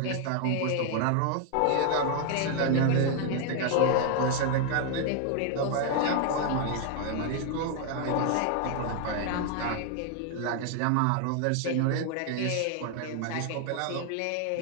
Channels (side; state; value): both; different; correlation 0.00